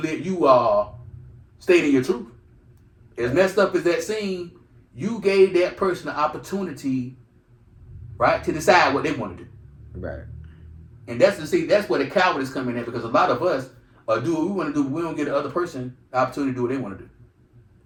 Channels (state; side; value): identical; both; correlation 1.00